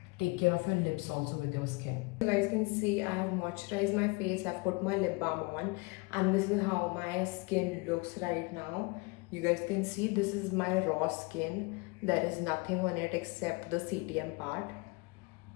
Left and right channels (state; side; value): quieter; right; 27.3 dB